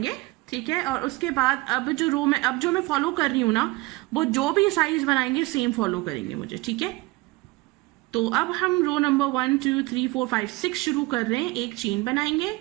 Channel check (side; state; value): left; quieter; 22.1 dB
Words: ठीक है। और उसके बाद अब जो मैं फॉलो कर रही हूँ ना, वो जो भी साइज बनाएंगे सेम फॉलो करेंगे मुझे, ठीक है। तो अब हम रो नंबर 1 2 3 4 5 6 शुरू कर रहे हैं। एक चेन बनाएंगे